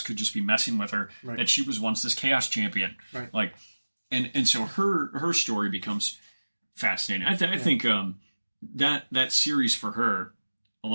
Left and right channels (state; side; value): inverted; both; correlation -1.00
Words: could just be messing with her, that she was once this Chaos champion. Right. And so her story becomes fascinating. I think that series for her,